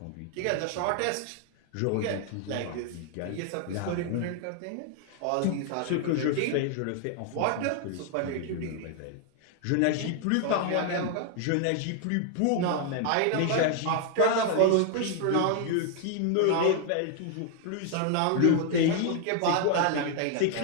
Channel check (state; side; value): different; both; correlation 0.00